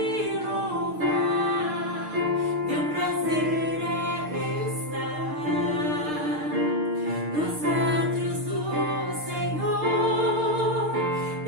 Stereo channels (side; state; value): left; late; 6.6 ms